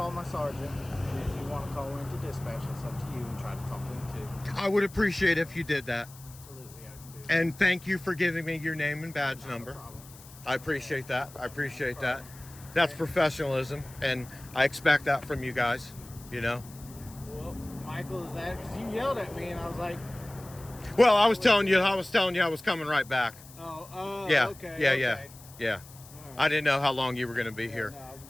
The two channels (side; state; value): left; noise; hiss, 20 dB below the sound